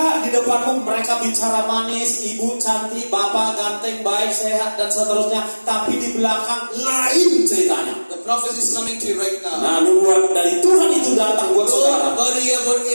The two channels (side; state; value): both; inverted; correlation -1.00